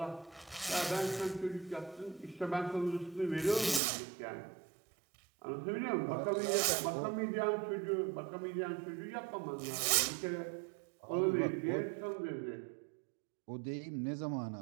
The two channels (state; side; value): drops out; left; at 3.8 s